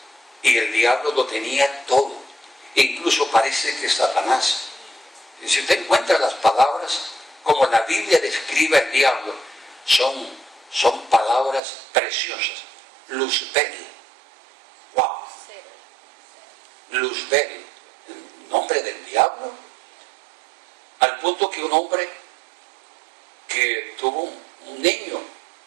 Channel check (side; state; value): left; drops out; at 11.6 s